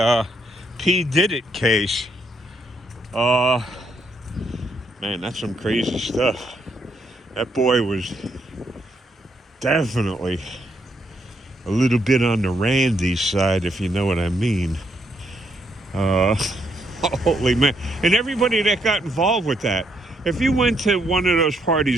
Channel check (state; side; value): normal; both; correlation 0.75